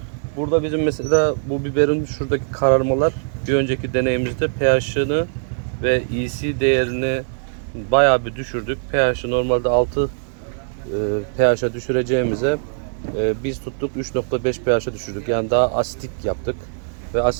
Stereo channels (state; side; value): silent; left; 65 dB below the other